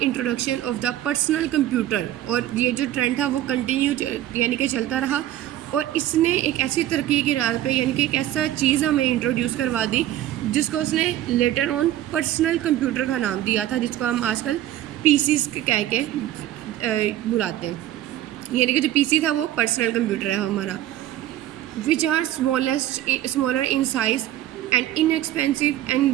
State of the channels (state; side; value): quieter; left; 13.2 dB